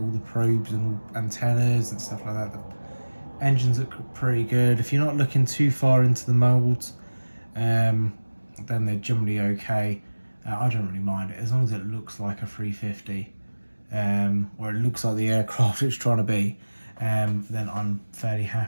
the probes and antennas and stuff like that. The engines look pretty good. If you're not looking too far into the molds, then they're generally okay. I don't really mind it as long as it looks like a 350, or it looks like the aircraft it's trying to be. Then I'm fairly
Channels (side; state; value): both; inverted; correlation -1.00